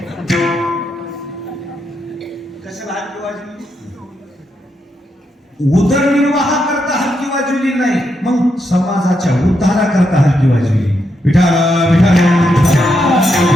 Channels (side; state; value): both; normal; correlation 0.81